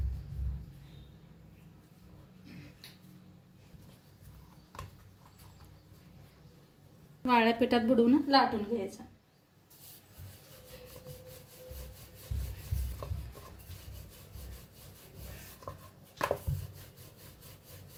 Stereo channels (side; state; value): both; identical; correlation 1.00